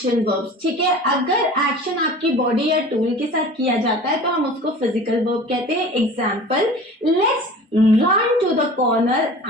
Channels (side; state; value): both; normal; correlation 0.40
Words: वर्ब्स, ठीक है। अगर एक्शन आपकी बॉडी या टूल के साथ किया जाता है तो हम उसको फिजिकल वर्ब कहते हैं। Example, let's run to the corner